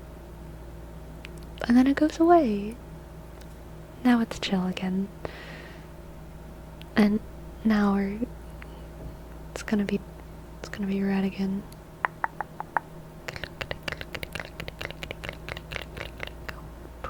And then it goes away. Now it's chill again. And now it's gonna be red again.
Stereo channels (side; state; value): both; identical; correlation 1.00